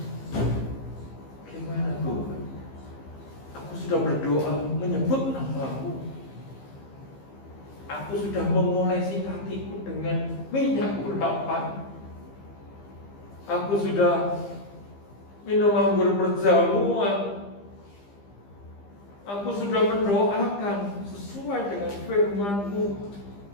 Tuhan? Aku sudah berdoa menyebut nama-Mu. Aku sudah mengolesi hatiku dengan minyak urapan. Aku sudah minum anggur berjamuan. Aku sudah mendoakan sesuai dengan firman-Mu.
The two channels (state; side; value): late; right; 15 ms